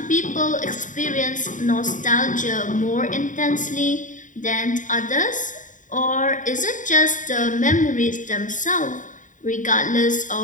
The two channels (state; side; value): late; right; 0.37 ms